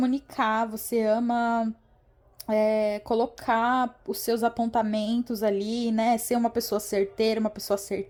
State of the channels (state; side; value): identical; both; correlation 1.00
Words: você ama colocar os seus apontamentos ali, né? Ser uma pessoa certeira, uma pessoa